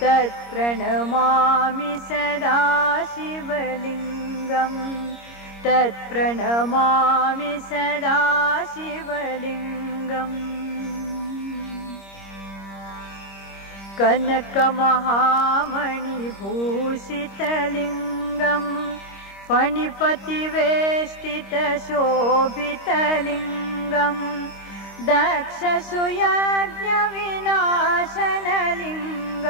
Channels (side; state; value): right; late; 26 ms